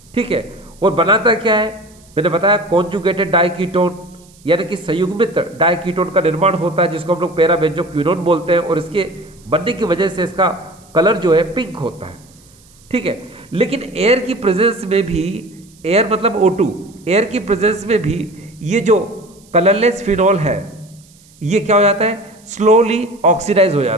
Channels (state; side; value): noise; right; hiss, 28 dB below the sound